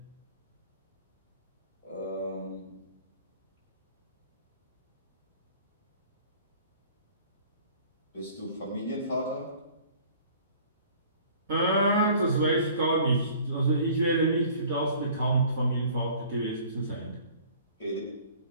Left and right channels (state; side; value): inverted; both; correlation -0.50